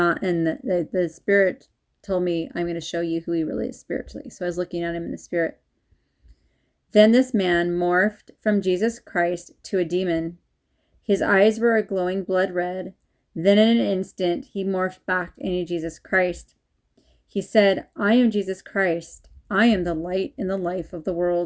in the Spirit told me, "I'm going to show you who he really is spiritually." So I was looking at him in the Spirit. Then this man morphed from Jesus Christ to a demon. His eyes were a glowing blood red. Then in an instant, he morphed back into Jesus Christ. He said, "I am Jesus Christ. I am the light and the life of the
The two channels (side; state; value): both; identical; correlation 1.00